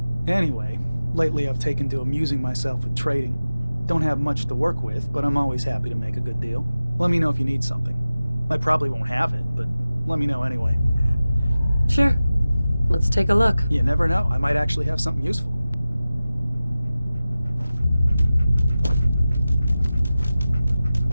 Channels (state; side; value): inverted; both; correlation -0.96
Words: Anyway, lately I've taken to amusing myself with trading. Don't have much to work with, but I'm always happy to make a good deal. Let me know if you need something. I probably won't have it, but let me know anyway. Sure. Let's take a look. You never know. I might actually have something useful.